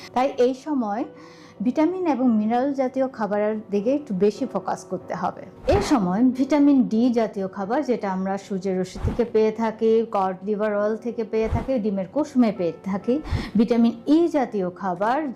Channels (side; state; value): both; identical; correlation 1.00